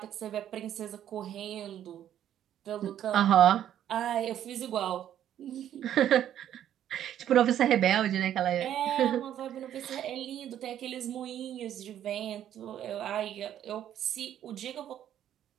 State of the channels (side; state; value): left; quieter; 10.8 dB